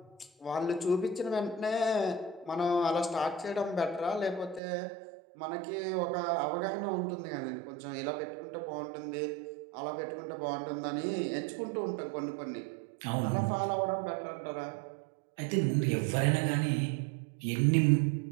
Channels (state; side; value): drops out; left; at 4.6 s